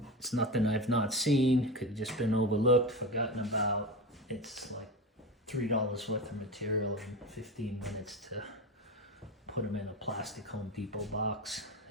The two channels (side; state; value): both; normal; correlation 0.24